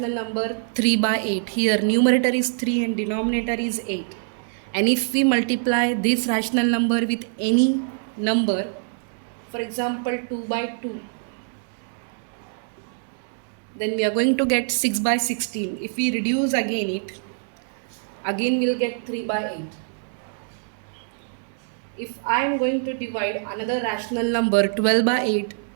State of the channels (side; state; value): left; silent; digital silence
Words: number 3 by 8, here numerator is 3 and denominator is 8. And if we multiply this rational number with any number, for example 2 by 2, then we are going to get 6 by 16. If we reduce again it, again we'll get 3 by 8. If I am going to divide another rational number 12 by 8